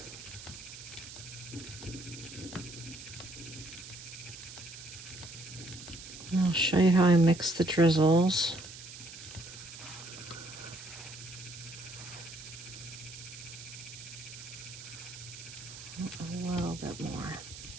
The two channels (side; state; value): right; noise; hiss, 13 dB below the sound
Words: I'll show you how I mix the drizzles. A little bit more.